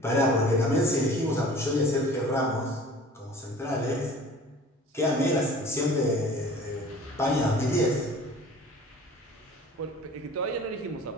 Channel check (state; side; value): normal; both; correlation 0.45